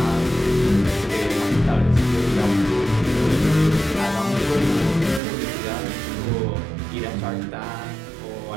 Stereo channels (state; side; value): drops out; left; at 5.2 s